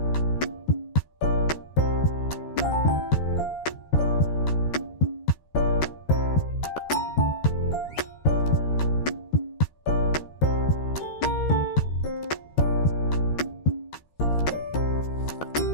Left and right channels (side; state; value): right; late; 13 ms